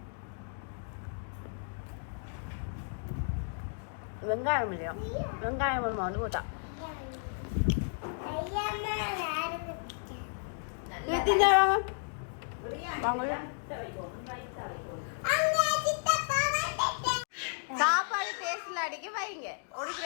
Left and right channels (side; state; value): right; silent; digital silence